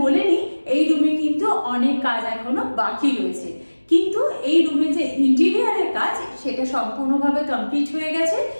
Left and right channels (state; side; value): inverted; both; correlation -1.00